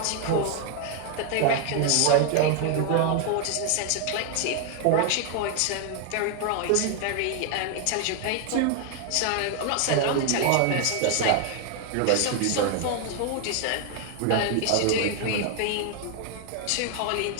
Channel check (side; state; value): both; different; correlation 0.00